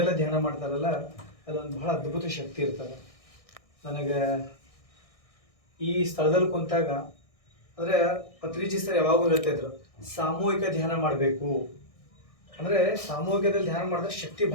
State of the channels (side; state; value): right; late; 1.6 ms